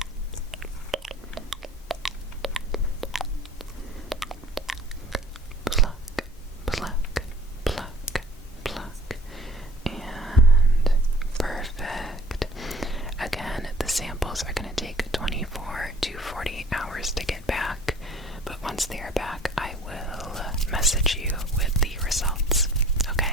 Pluck, pluck, pluck, pluck, and perfect. Again, the samples are going to take 24 to 48 hours to get back, but once they are back, I will message you with the results.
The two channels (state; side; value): normal; both; correlation 0.49